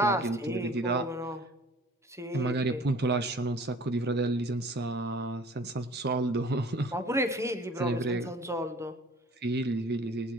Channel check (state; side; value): normal; both; correlation 0.49